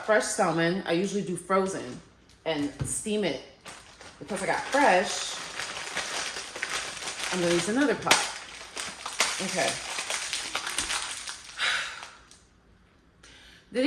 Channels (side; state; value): both; identical; correlation 1.00